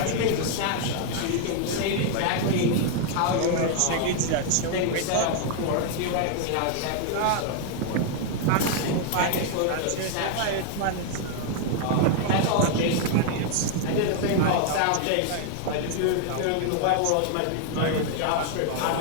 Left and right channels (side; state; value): both; different; correlation 0.00